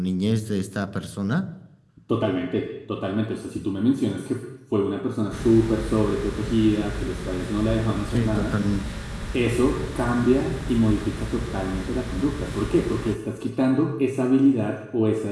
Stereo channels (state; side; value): identical; both; correlation 1.00